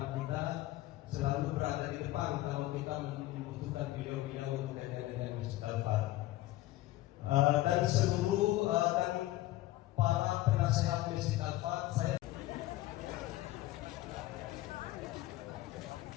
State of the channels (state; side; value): quieter; right; 16.6 dB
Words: kita, selalu berada di depan kalau kita membutuhkan beliau-beliau untuk dengan Masjid Al-Fat. Dan seluruh dan para penasehat Masjid Al-Fat, saya